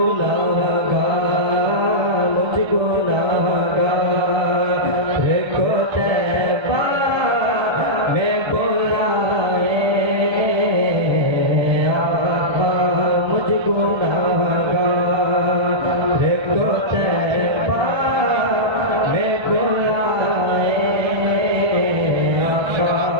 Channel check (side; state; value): left; late; 1.3 ms